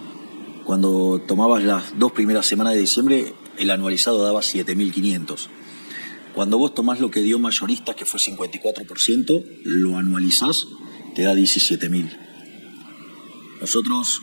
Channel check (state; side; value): inverted; both; correlation -1.00